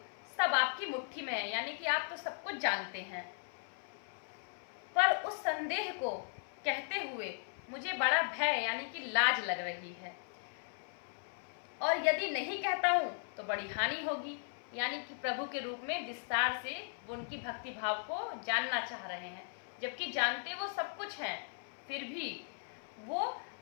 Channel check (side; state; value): right; silent; 53 dB below the other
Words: सब आपकी मुट्ठी में है, यानी कि आप तो सब कुछ जानते हैं, पर उस संदेह को कहते हुए मुझे बड़ा भय यानी कि लाज लग रही है, और यदि नहीं कहता हूं तो बड़ी हानि होगी। यानी कि प्रभु के रूप में विस्तार से वो उनकी भक्ति भाव को जानना चाह रहे हैं, जबकि जानते वो सब कुछ हैं, फिर भी वो